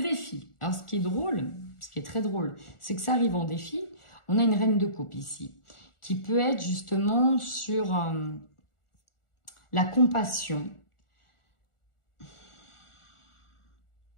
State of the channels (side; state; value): right; late; 1.4 ms